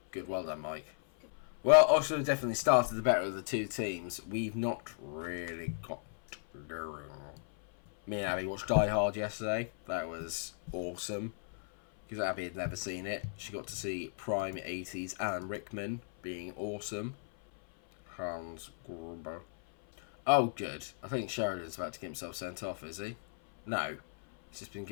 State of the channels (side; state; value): right; silent; 54 dB below the other